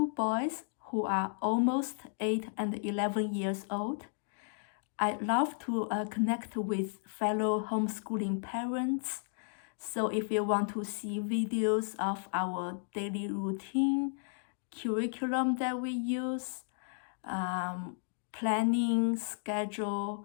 boys who are almost 8 and 11 years old. I love to connect with fellow homeschooling parents. So if you want to see videos of our daily routine, curriculum that we use, planning,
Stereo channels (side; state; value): right; silent; digital silence